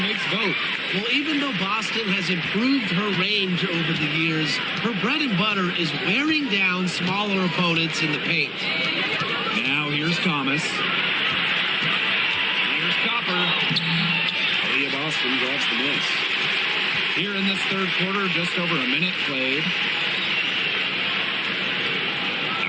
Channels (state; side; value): identical; both; correlation 1.00